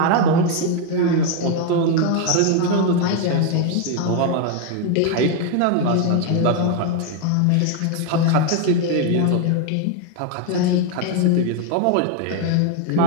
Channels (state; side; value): different; both; correlation 0.01